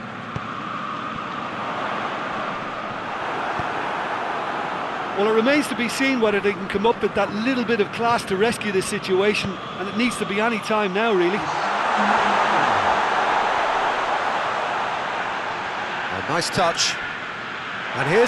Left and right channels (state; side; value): identical; both; correlation 1.00